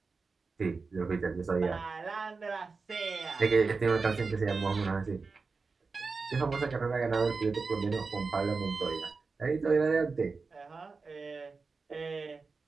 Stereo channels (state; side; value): quieter; left; 4.4 dB